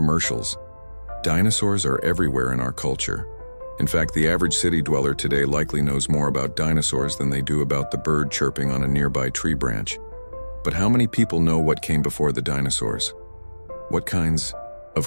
Dinosaurs are everywhere in our culture. In fact, the average city dweller today likely knows more about dinosaurs than they do about the bird chirping on a nearby tree branch. But how many people know what came before the dinosaurs? What kinds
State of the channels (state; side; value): inverted; both; correlation -1.00